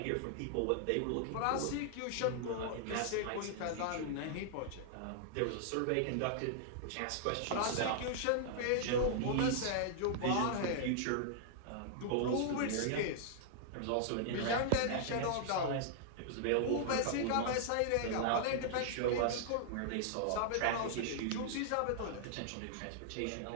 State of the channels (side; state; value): both; different; correlation -0.01